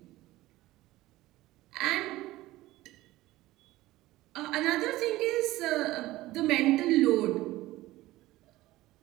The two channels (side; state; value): left; quieter; 17.3 dB